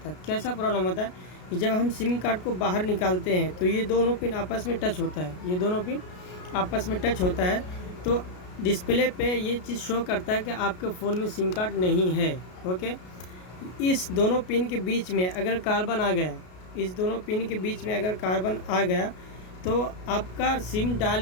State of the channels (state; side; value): late; right; 33 ms